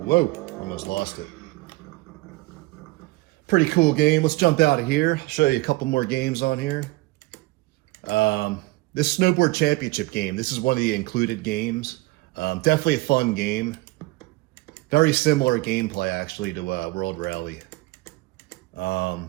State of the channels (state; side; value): quieter; left; 20.8 dB